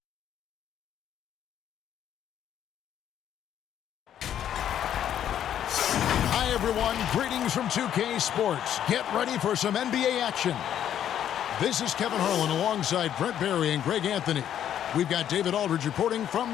Hi everyone, greetings from 2K Sports. Get ready for some NBA action. This is Kevin Harlan alongside Brent Barry and Greg Anthony. We've got David Aldridge reporting from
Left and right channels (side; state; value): right; quieter; 10.2 dB